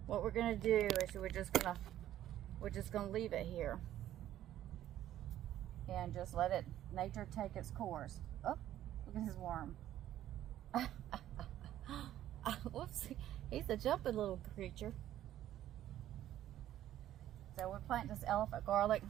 What we're going to do is we're just going to leave it here. And just let nature take its course. Oh, look at his worm. Whoops, he's a jumping little creature. So we're planting this elephant garlic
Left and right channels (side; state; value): left; quieter; 12.5 dB